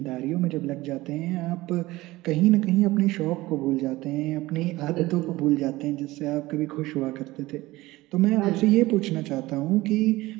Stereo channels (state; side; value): quieter; left; 18.8 dB